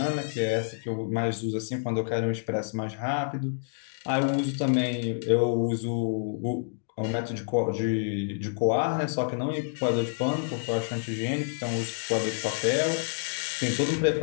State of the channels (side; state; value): right; silent; digital silence